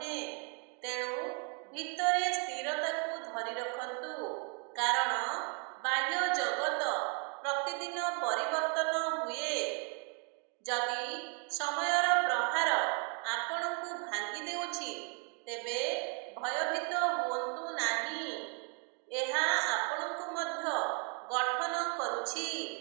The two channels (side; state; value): left; quieter; 38.4 dB